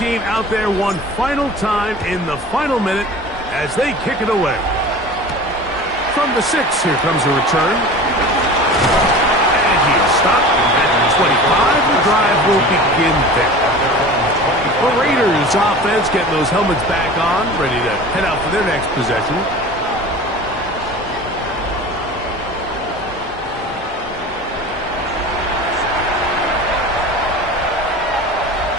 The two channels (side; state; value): both; normal; correlation 0.37